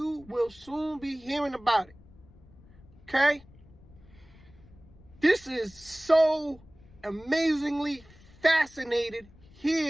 will soon be hearing about it. Okay? This is so amazingly fascinated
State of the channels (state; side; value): noise; left; rumble, 24 dB below the sound